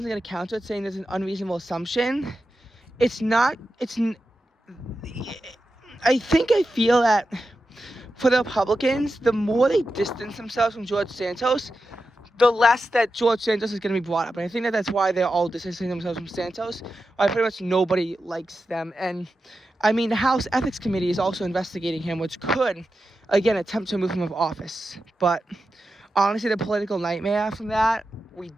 are going to counter it, saying there's an unreasonable assumption. I feel that for the Republicans, the more they distance themselves from George Santos, the less that George Santos is going to be brought up. And I think that that's why they're all distancing themselves from Santos. Pretty much nobody likes them. And, I mean, the House Ethics Committee is also investigating him, which could, again, attempt to remove him of office. But honestly, the political nightmare from that, we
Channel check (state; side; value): normal; both; correlation 0.91